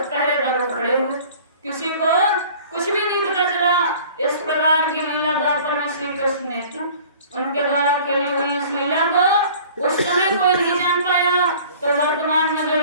खड़े हुए, किसी को कुछ भी नहीं पता चला। इस प्रकार की लीला द्वापर में श्री कृष्ण ने की, उनके द्वारा खेली हुई इस लीला को उस समय कोई नहीं जान पाया। तो वर्तमान में जो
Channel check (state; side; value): inverted; both; correlation -0.47